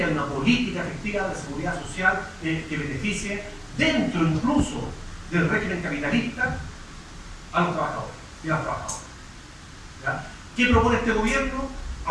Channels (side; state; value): both; identical; correlation 1.00